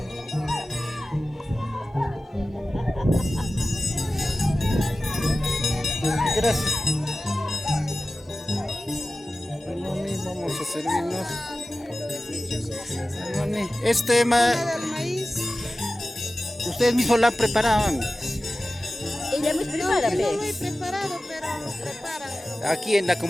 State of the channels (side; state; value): both; normal; correlation 0.95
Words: Gracias. Mami, vamos a servirnos. Mami, ustedes mismos la preparaban. Ella me prepara, No lo he preparado, pero nos preparan. Aquí en la